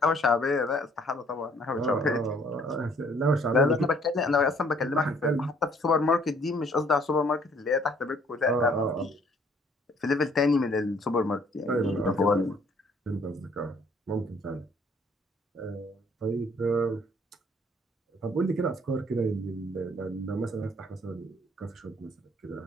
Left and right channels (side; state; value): both; normal; correlation 0.61